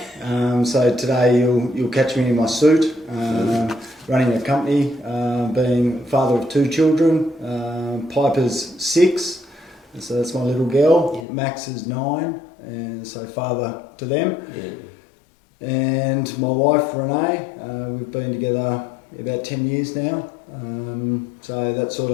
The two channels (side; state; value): right; drops out; at 11.2 s